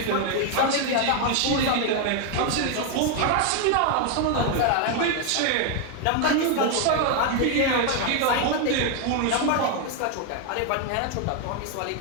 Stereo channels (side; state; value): both; different; correlation 0.01